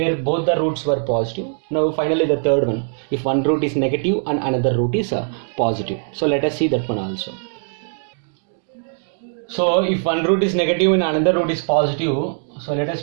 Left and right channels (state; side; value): silent; left; digital silence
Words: both the roots were positive. Now finally the third one, if one root is negative and another root is positive. So let us see that one also. So if one root is negative and another root is positive, so let us